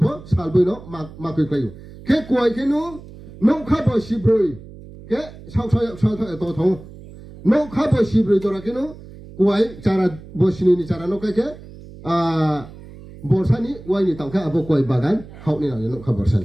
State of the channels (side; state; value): right; noise; hum, 17 dB below the sound